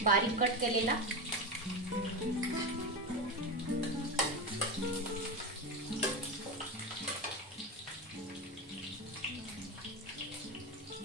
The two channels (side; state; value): both; normal; correlation 0.18